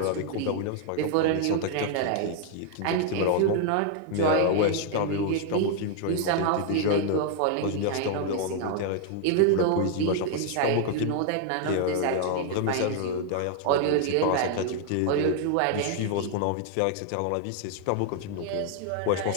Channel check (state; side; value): different; both; correlation 0.00